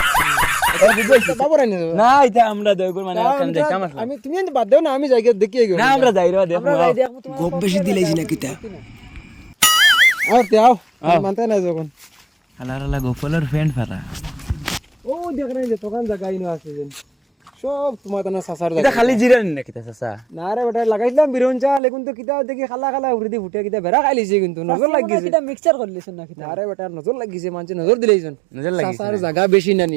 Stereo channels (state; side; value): drops out; left; at 21.8 s